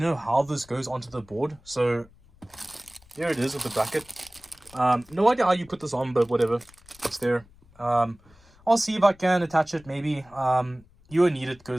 how this goes onto the board, so here it is with the bracket. No idea how you put this on, but whatever, it's there. I'll see if I can attach it, maybe. You won't need it,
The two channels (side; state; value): left; noise; rumble, 27 dB below the sound